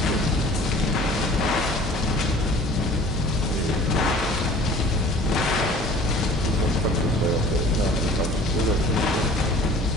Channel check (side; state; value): both; normal; correlation 0.48